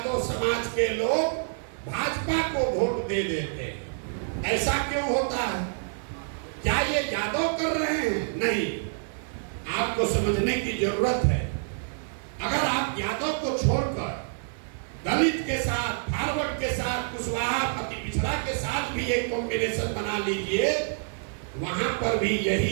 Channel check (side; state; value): left; silent; digital silence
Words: समाज के लोग भाजपा को वोट दे देते हैं। ऐसा क्यों होता है। क्या ये यादव कर रहे हैं। नहीं, आपको समझने की जरूरत है। अगर आप यादव को छोड़कर दलित के साथ, फॉरवर्ड के साथ, कुशवाहा अति पिछड़ा के साथ भी एक कॉम्बिनेशन बना लीजिए, वहां पर भी